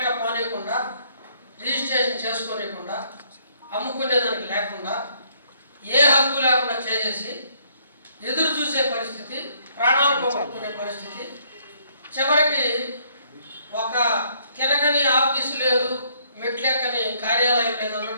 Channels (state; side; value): inverted; both; correlation -0.65